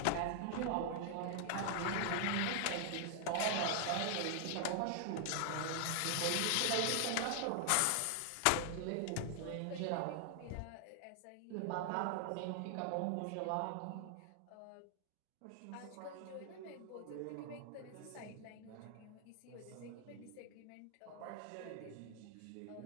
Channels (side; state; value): both; different; correlation 0.00